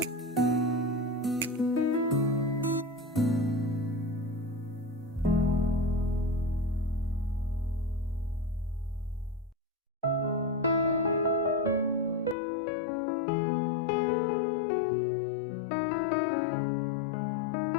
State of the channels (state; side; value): drops out; right; at 12.4 s